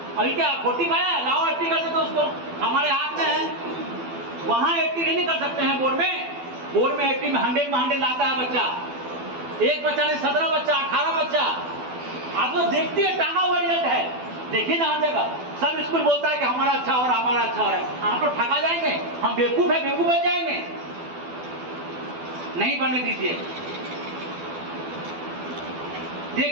अभी क्या 40 पाया, लाओ 80 कर देते उसको, हमारे हाथ में है। वहां 80 नहीं कर सकते हैं बोर्ड में 80 में 100 लाता है बच्चा। एक बच्चा ने 17 बच्चा, 18 बच्चा, आप लोग देखते हैं, टांगा हुआ रिजल्ट है। देखिए ना, हर जगह सब स्कूल बोलता है कि हमारा अच्छा हो रहा है, हमारा अच्छा हो रहा है। आप लोग ठगा जाएंगे, हम बेवकूफ है, बेवकूफ बन जाएंगे। नहीं बनने दीजिए,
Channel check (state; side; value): late; left; 12 ms